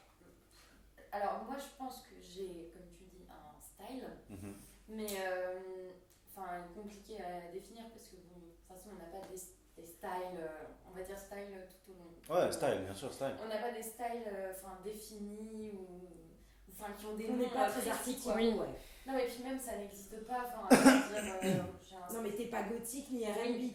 Alors moi je pense que j'ai, comme tu dis, un style, Mhm. mais enfin compliqué à définir parce que bon, de toute façon on n'a pas des styles, on va dire style tout au long. Ouais, style, bien sûr, style. On n'a pas des styles définis ou enfin qui ont des On noms n'est pas très précis, artistique, quoi. ouais. Non mais puis même ça n'existe pas, enfin je veux dire, j'ai un Non, mais t'es pas gothique ni oui,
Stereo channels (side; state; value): both; identical; correlation 1.00